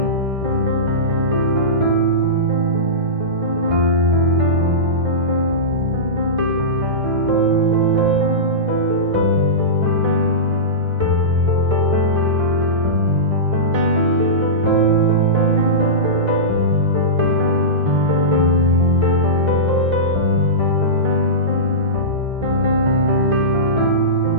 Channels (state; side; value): late; left; 1.6 ms